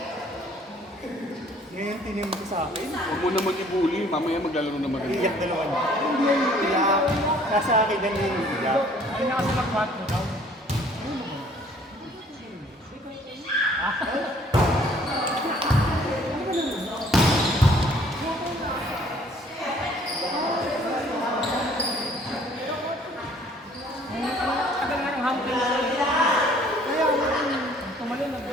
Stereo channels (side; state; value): both; normal; correlation 0.57